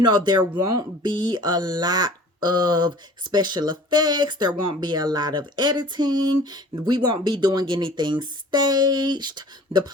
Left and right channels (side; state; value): both; normal; correlation 0.46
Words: won't be a lot of special effects. There won't be a lot of editing. We won't be doing anything staged. The